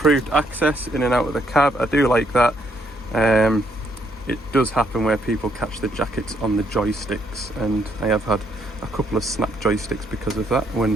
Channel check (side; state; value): both; normal; correlation 0.72